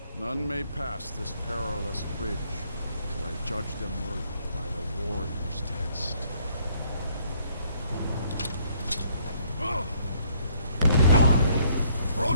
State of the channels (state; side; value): inverted; both; correlation -0.66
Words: none may pass this perilous bridge till I judge them worthy by the warrior's test.